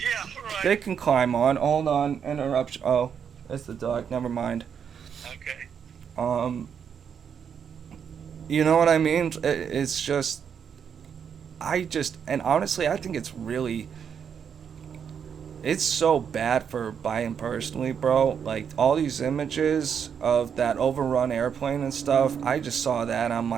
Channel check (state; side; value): quieter; left; 7.5 dB